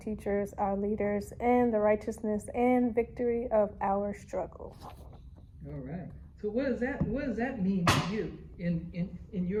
our leaders, and the righteousness and victory of our struggle. All right. So what does that mean to you in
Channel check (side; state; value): both; identical; correlation 1.00